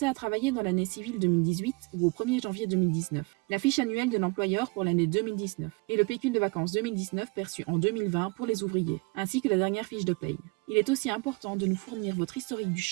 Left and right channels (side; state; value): left; quieter; 28.4 dB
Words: à travailler dans l'année civile 2018 ou au 1er janvier 2019, la fiche annuelle de l'employeur pour l'année 2019 et le pécule de vacances 2019 perçu en 2020 pour les ouvriers, ainsi que la dernière fiche de paye. Il est aussi important de nous fournir votre historique du